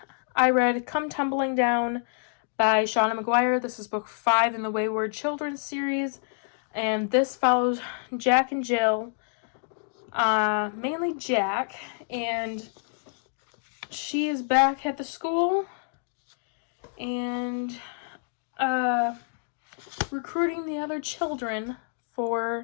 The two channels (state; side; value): silent; right; digital silence